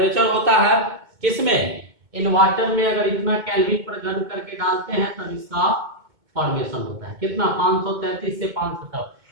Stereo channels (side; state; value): left; late; 2.2 ms